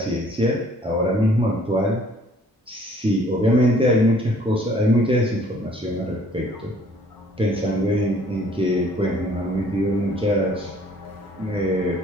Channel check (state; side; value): normal; both; correlation 0.58